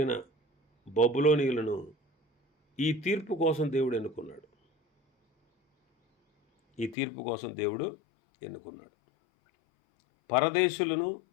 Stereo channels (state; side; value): drops out; right; at 7.0 s